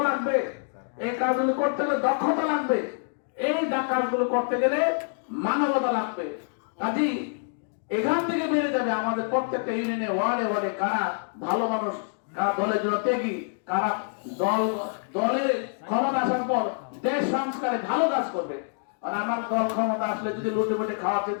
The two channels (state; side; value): silent; right; digital silence